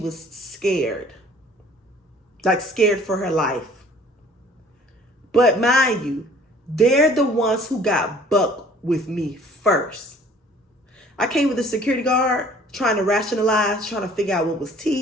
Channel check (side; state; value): both; normal; correlation 0.53